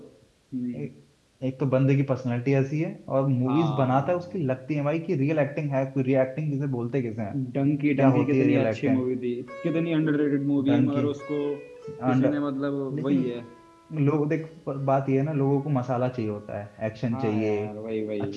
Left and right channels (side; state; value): both; identical; correlation 1.00